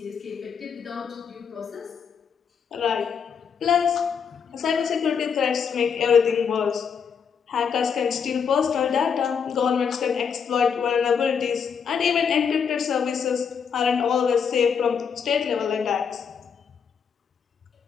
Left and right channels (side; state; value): right; quieter; 6.7 dB